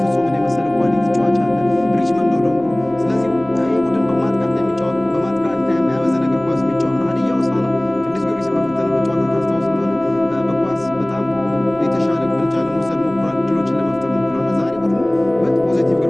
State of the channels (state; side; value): noise; left; rumble, 26 dB below the sound